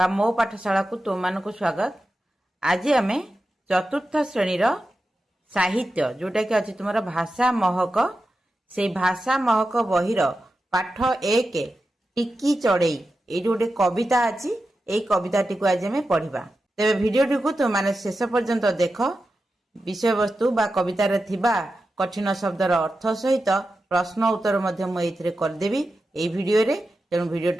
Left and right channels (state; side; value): normal; both; correlation 0.91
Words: मो पाठशाला को तुम मानक स्वागत। आज आम चतुर्थ श्रेणी साहित्य जोटा कि अच्छी तुम भाषा महक से भाषा महक बहिर पाठ एक टिकी चढ़ई ये गोटे कविता अच्छी यही कविता टी को आज आम पढ़ा। तेरे भिडियोटी को तुम मैंने शेष पर्यंत देख विषय वस्तु बा कवितार थिबा कठिन शब्दर अर्थ सहित प्रश्न उत्तर मुझे करदेवी ये भिडियो रे। तेणु